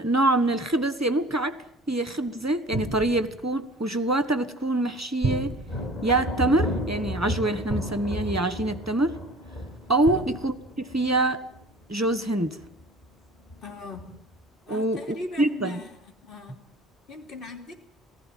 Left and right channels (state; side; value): normal; both; correlation 0.45